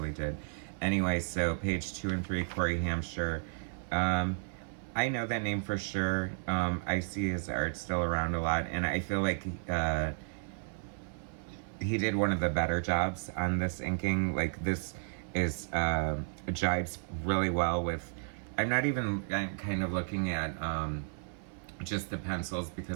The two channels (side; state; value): left; silent; 56 dB below the other